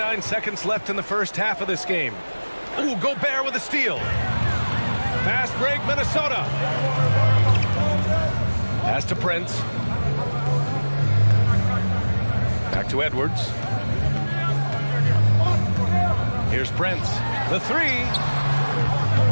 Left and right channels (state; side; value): inverted; both; correlation -1.00